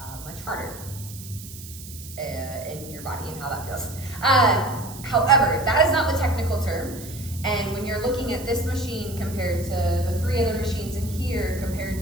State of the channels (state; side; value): noise; right; hiss, 15 dB below the sound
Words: much harder in your body and how that feels. However, that is not the technical term. And when you're looking at this machine compared to the 3 other machines in here, compared